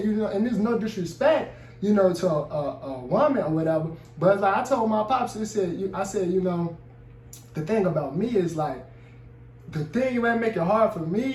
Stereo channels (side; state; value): both; identical; correlation 1.00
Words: and there's no disrespect, to a woman or whatever. But like I told my pops, I said, the thing about me is like, the thing that make it hard for